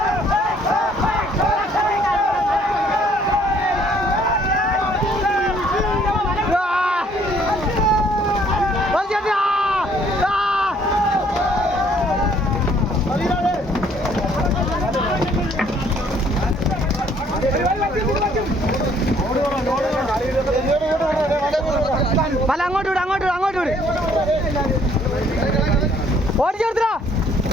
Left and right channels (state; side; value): normal; both; correlation 0.62